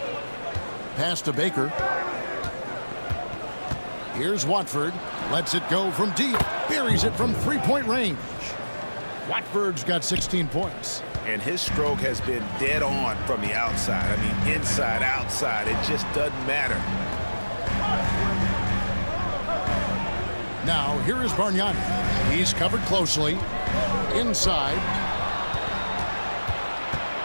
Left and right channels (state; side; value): inverted; both; correlation -1.00